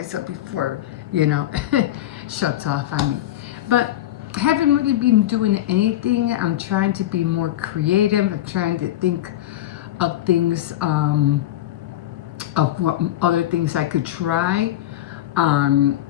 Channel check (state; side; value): quieter; right; 13.5 dB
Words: up before, you know, shuts off on me. But I haven't really been doing anything. I'm trying to be more creative. I'm trying to think of things, of what other things I could try.